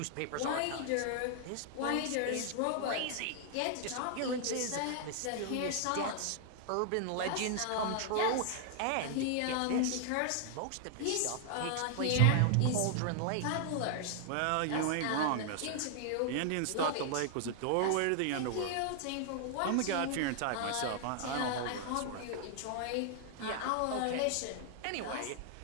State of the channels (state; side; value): different; both; correlation 0.00